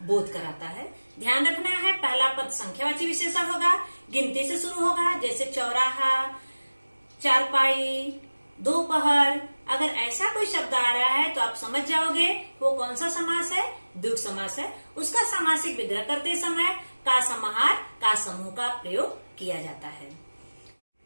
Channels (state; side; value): inverted; both; correlation -1.00